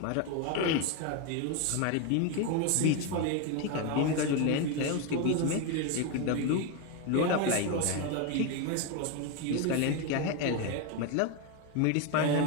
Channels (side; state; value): both; different; correlation 0.02